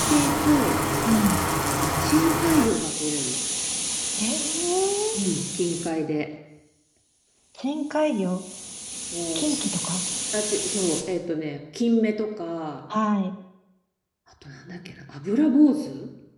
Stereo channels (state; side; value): identical; both; correlation 1.00